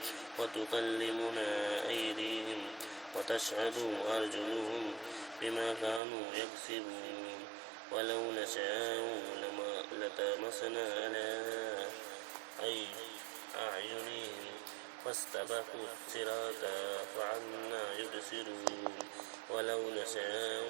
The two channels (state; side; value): drops out; left; at 6.0 s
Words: وتكلمنا أيديهم وتشهد أرجلهم بما كانوا يكسبون ولو نشاء لطمسنا على أعينهم فاستبقوا الصراط فعنا يبصرون ولو نشاء